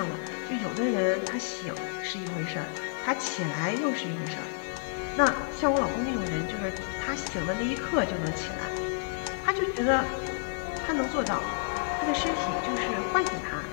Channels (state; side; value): silent; right; digital silence